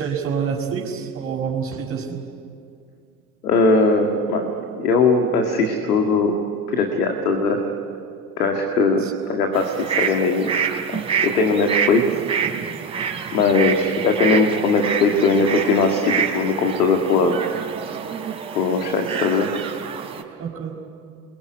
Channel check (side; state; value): both; normal; correlation 0.20